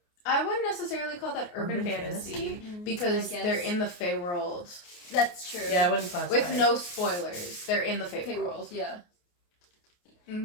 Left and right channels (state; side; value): late; right; 28 ms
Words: I wouldn't necessarily call that urban fantasy because they're in the Fae world. That's true. Yeah, I wouldn't classify With no spoilers, they're in the Fae world. Yeah. Mm-hmm.